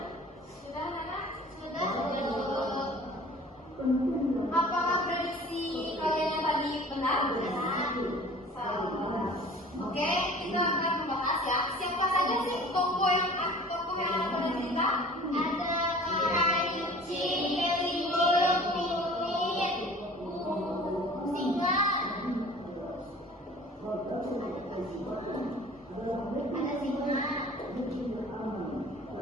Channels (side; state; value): both; normal; correlation 0.46